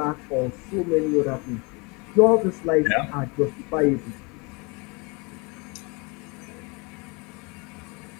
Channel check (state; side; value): quieter; right; 28.9 dB